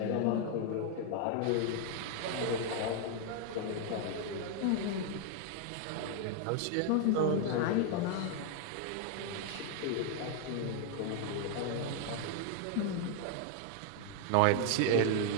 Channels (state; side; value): different; both; correlation 0.00